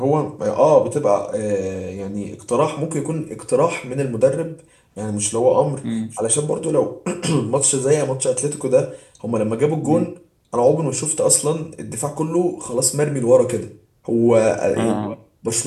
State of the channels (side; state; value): both; identical; correlation 1.00